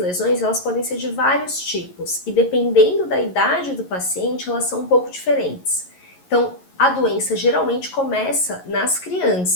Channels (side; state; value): right; late; 11 ms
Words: elas podem ser de vários tipos e dependendo da idade do paciente, elas são um pouco diferentes. Então, a doença geralmente começa nas